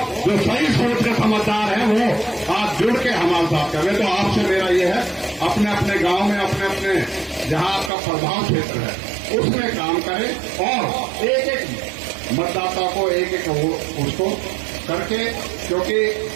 जो सही सोच के समझदार हैं वो आज जुड़ के हमारे साथ कर रहे। तो आपसे मेरा ये है, अपने अपने गांव में, अपने अपने जहां आपका प्रभाव क्षेत्र है उसमें काम करें और एक एक मतदाता को एक एक उसको करके, क्योंकि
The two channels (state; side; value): drops out; left; at 7.9 s